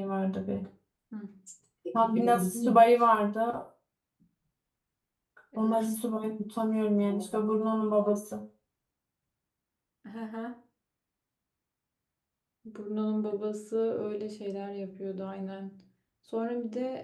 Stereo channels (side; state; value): both; identical; correlation 1.00